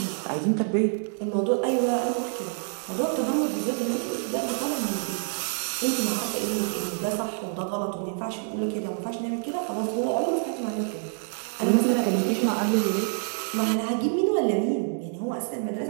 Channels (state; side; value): silent; left; 60 dB below the other